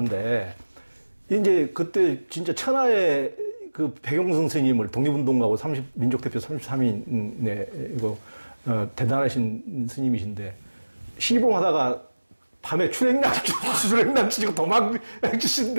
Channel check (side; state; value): both; inverted; correlation -1.00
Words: 이제 그때 진짜 천하의 그 백용성 스님을 독립운동가고 민족대표 33인의 이거 대단하신 스님이신데 시봉하다가 밤에 출행난치시고